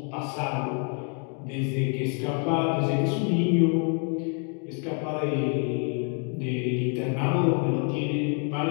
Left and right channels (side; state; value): right; quieter; 39.8 dB